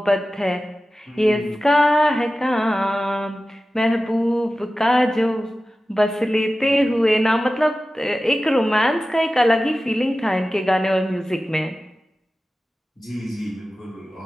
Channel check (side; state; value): both; normal; correlation 0.95